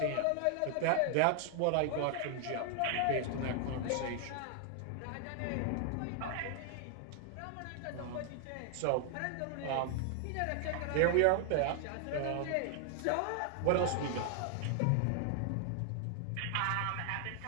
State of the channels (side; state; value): both; different; correlation 0.00